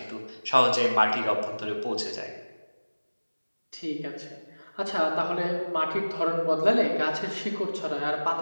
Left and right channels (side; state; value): both; inverted; correlation -1.00